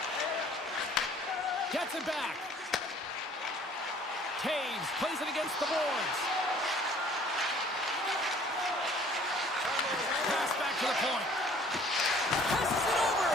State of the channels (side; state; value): both; normal; correlation 0.55